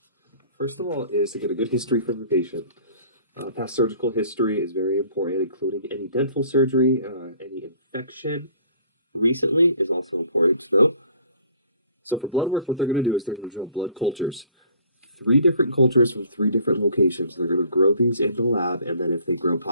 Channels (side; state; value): both; inverted; correlation -0.54